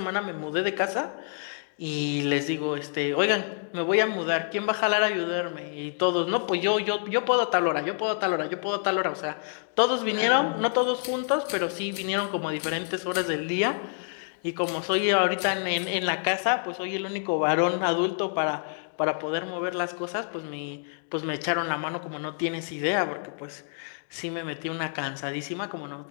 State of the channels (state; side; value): silent; right; digital silence